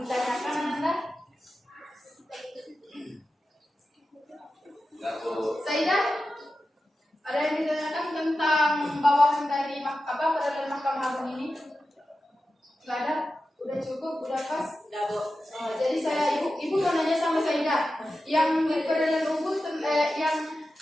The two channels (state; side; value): normal; both; correlation 0.92